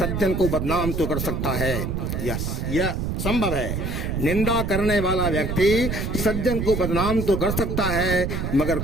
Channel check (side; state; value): right; noise; rumble, 2 dB below the sound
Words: को बदनाम तो कर सकता है, यह संभव है। निंदा करने वाला व्यक्ति सज्जन को बदनाम तो कर सकता है, मगर